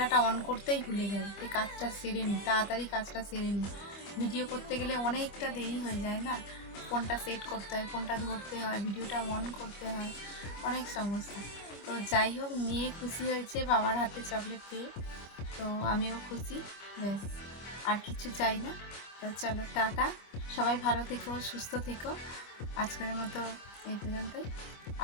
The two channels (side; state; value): right; late; 25 ms